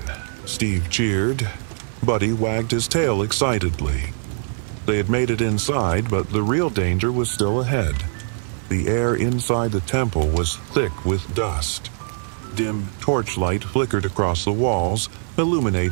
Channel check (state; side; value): silent; left; digital silence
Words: Steve cheered. Buddy wagged his tail excitedly. They had made it inside, but the real danger was still ahead. The air inside the temple was thick with dust. Dim torchlight flickered across the walls,